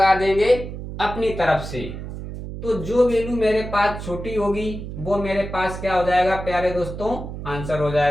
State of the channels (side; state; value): right; noise; hum, 9 dB below the sound